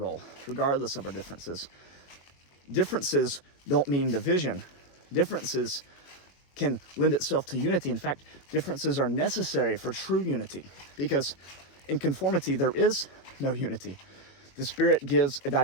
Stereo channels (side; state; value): right; late; 21 ms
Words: regardless of our differences. Differences don't mean division. Differences can lend itself to unity. In fact, differences are necessary for true unity, because in conformity, there is no unity. The Spirit gives a